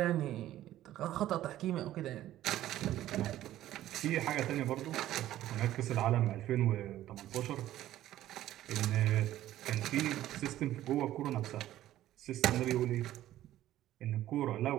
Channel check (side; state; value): left; quieter; 13.6 dB